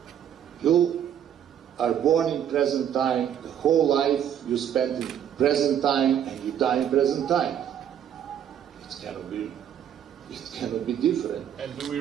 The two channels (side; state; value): left; quieter; 9.6 dB